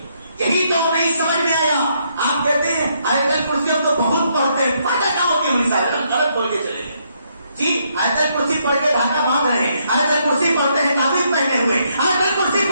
یہی تو نہیں سمجھ میں آیا. آپ کہتے ہیں آیت الکرسی ہم تو بہت پڑھتے ہیں, فائدہ کیا ہوتی ہے؟ مثال ہم غلط بول کے چلے گئے جی. آیت الکرسی پڑھ کے دھاگا باندھ رہے ہیں, آیت الکرسی پڑھتے ہیں تعویذ پہنے ہوئے, آیت الکرسی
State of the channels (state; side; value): inverted; both; correlation -0.74